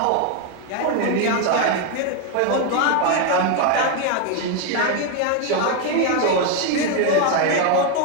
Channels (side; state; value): both; different; correlation 0.01